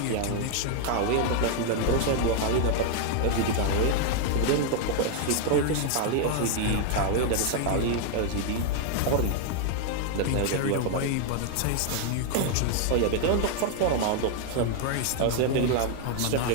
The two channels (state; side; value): different; both; correlation 0.00